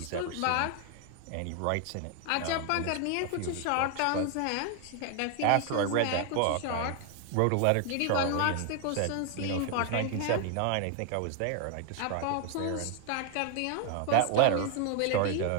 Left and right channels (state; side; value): different; both; correlation 0.00